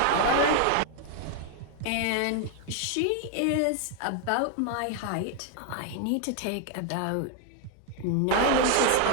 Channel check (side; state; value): both; different; correlation 0.00